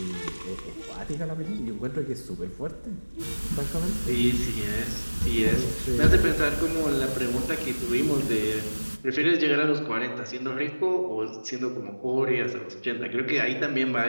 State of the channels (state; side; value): inverted; both; correlation -1.00